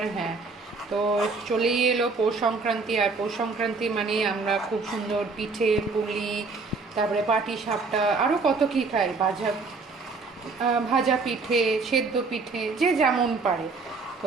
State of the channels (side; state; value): left; quieter; 4.1 dB